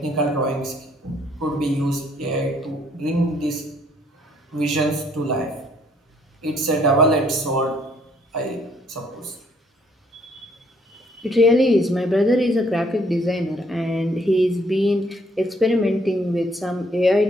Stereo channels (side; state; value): both; normal; correlation 0.65